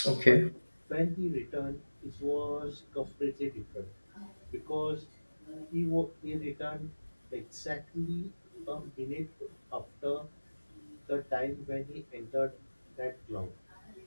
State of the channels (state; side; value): inverted; both; correlation -1.00